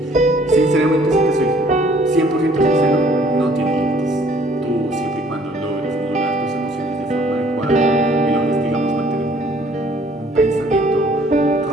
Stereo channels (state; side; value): normal; both; correlation 0.59